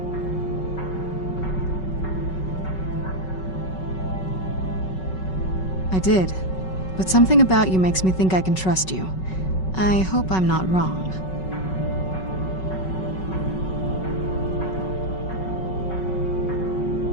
I did. But something about you makes me think I can trust you. I hope I'm not wrong.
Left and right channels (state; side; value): late; right; 5.3 ms